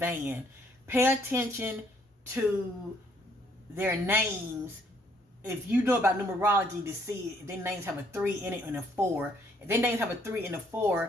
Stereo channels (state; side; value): normal; both; correlation 0.66